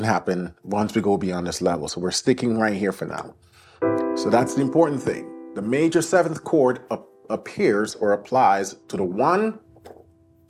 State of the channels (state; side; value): identical; both; correlation 1.00